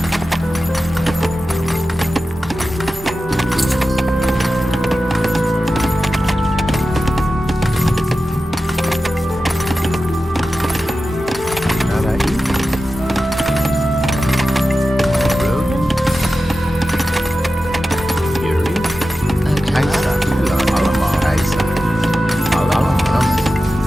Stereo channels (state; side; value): normal; both; correlation 0.93